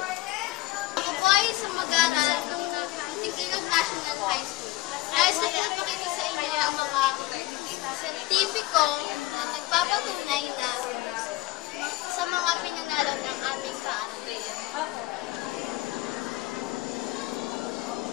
Ako po ay isang mag-aaral ng Muntinilog National High School. Nais ko ipakita sa inyo ang mga sertipiko na nagpapatunay na sa mga pinanalo ng aming paaralan.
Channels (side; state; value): right; quieter; 18.1 dB